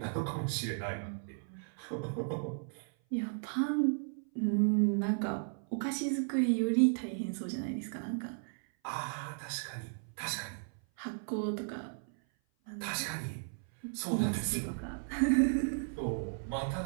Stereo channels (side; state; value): left; silent; 54 dB below the other